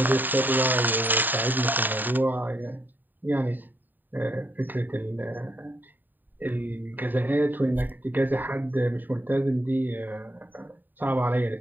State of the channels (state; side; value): late; left; 0.090 ms